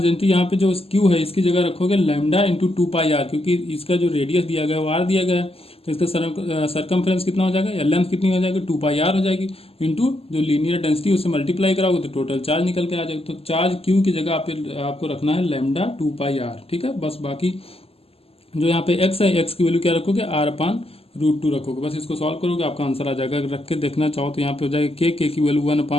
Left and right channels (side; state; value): right; late; 0.28 ms